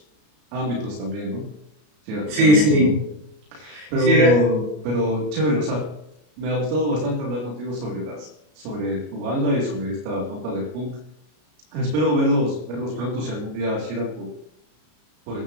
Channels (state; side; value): late; left; 33 ms